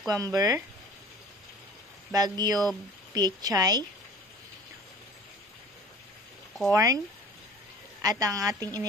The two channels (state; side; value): normal; both; correlation 0.44